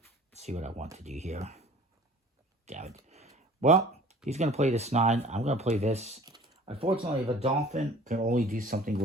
Let's see what I want to do here. Damn it. Well, he's going to play this 9. I'm going to play this. Unfortunately, the dolphin can only do something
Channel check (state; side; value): normal; both; correlation 0.47